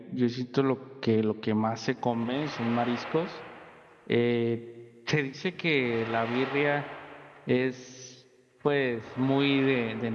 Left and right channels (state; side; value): identical; both; correlation 1.00